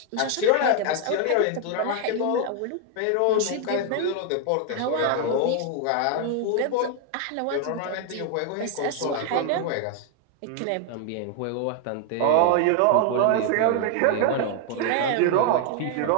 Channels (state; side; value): different; both; correlation 0.00